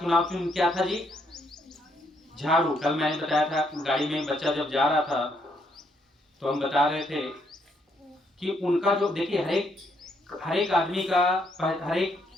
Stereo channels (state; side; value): normal; both; correlation 0.73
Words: चिन्ह क्या था जी? झाड़ू। कल मैंने बताया था, गाड़ी में बच्चा जब जा रहा था तो हम बता रहे थे कि उनका जो, देखिए, हर एक आदमी का, हर एक